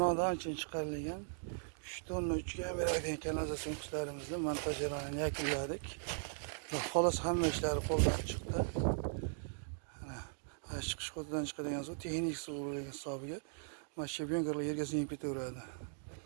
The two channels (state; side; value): silent; left; digital silence